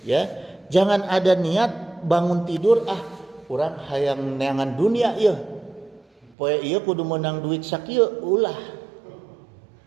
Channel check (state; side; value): drops out; left; at 6.4 s